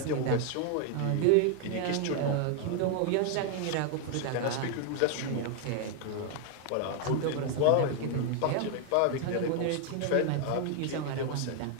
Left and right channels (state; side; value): different; both; correlation 0.00